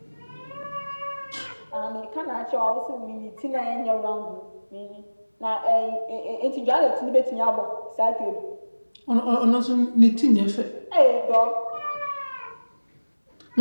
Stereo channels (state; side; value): inverted; both; correlation -1.00